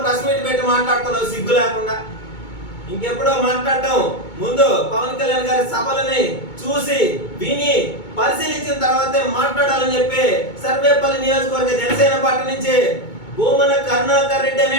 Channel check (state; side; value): late; right; 2.2 ms